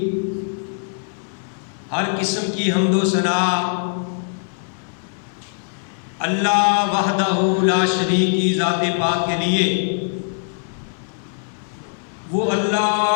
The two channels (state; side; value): silent; right; digital silence